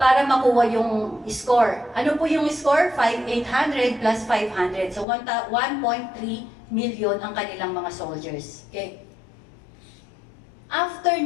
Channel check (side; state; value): right; drops out; at 5.1 s